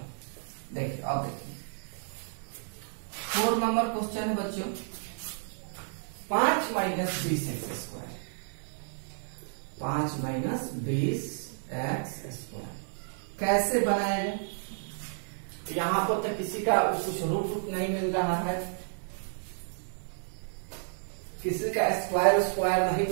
देखिए अब देखिए 4 नंबर क्वेश्चन है बच्चों, 5 minus 20x square, 5 minus 20x square कैसे बनाया जाए? यहां पर तो किसी का कुछ रूट नहीं मिल रहा है, किसी का स्क्वायर नहीं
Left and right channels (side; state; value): left; silent; digital silence